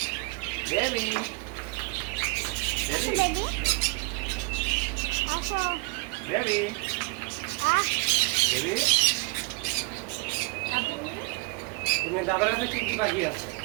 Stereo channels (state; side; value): quieter; left; 25.9 dB